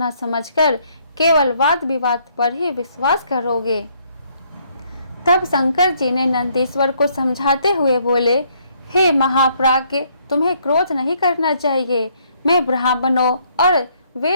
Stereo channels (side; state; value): both; inverted; correlation -0.68